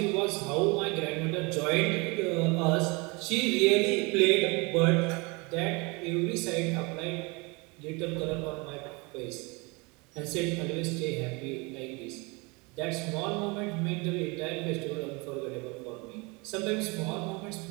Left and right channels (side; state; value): left; quieter; 27.9 dB